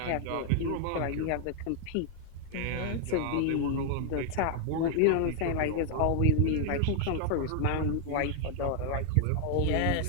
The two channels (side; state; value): both; different; correlation 0.00